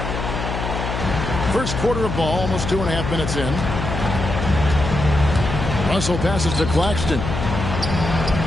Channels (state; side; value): noise; left; hum, 4 dB below the sound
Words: First quarter of ball, almost 2.5 minutes in. Russell passes to Claxton.